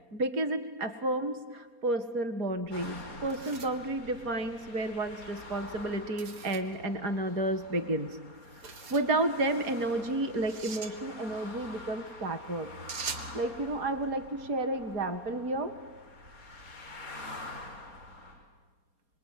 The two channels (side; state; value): left; late; 4.2 ms